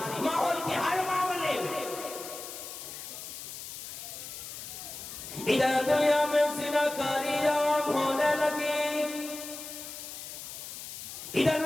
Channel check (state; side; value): noise; left; hiss, 10 dB below the sound